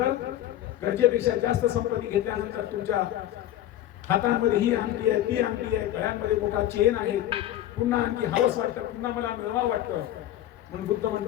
गरजेपेक्षा जास्त संपत्ती घेतल्यानंतर तुमच्या हातांमध्ये ही अंगठी आहे, ती अंगठी आहे, गळ्यांमध्ये मोठा चेन आहे, पुन्हा आणखी हवस वाटतं, पुन्हा मला मिळवावं वाटतं. म्हणून बुद्ध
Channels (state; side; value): quieter; right; 13.0 dB